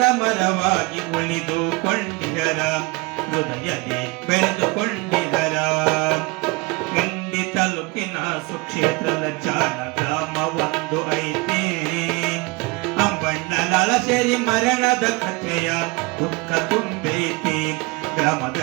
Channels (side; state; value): left; quieter; 25.5 dB